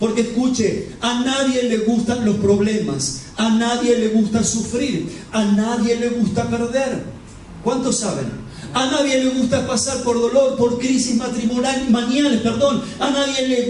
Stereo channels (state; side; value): identical; both; correlation 1.00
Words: escuche, a nadie le gustan los problemas, a nadie le gusta sufrir, a nadie le gusta perder. ¿Cuántos saben? A nadie le gusta pasar por dolor, por crisis matrimoniales, a nadie le